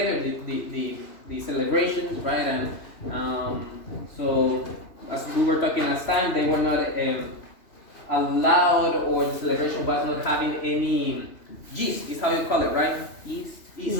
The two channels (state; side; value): late; right; 3.0 ms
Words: The celebrations, right? And so, as we were talking last time, they were not allowed, or the celebration was not having any yeast, is how you call it, right? Yeast.